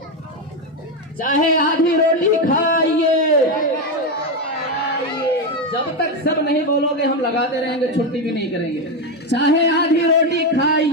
चाहे आधी रोटी खाइए, जब तक सब नहीं बोलोगे हम लगाते रहेंगे, छुट्टी भी नहीं करेंगे। चाहे आधी रोटी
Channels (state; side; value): normal; both; correlation 0.10